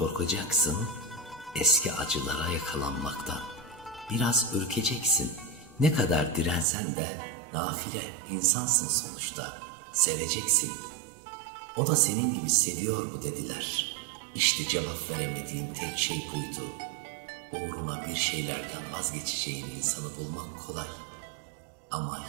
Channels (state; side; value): drops out; left; at 6.7 s